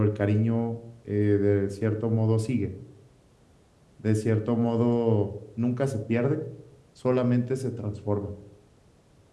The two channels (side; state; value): both; identical; correlation 1.00